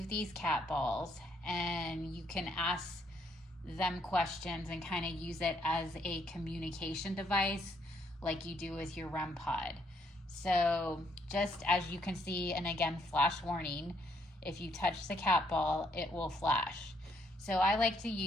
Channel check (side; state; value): both; normal; correlation 0.70